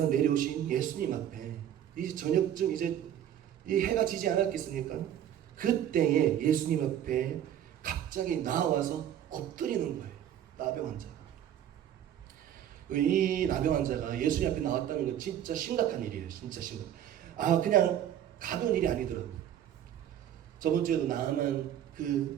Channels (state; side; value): quieter; left; 10.5 dB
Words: 내려오신 예수님 앞에 이제 저녁쯤 이제 이 해가 지지 않았겠습니까? 그때에 예수님 앞에 갑자기 나와서 엎드리는 거예요. 나병 환자가. 이 나병 환자가 예수님 앞에 나왔다는 건 진짜 심각한 일이에요. 진짜 심각. 그냥 가벼운 일이 아니더라고요. 저번 주에도 나만